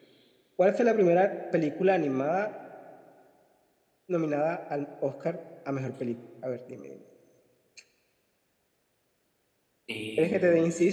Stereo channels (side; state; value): both; identical; correlation 1.00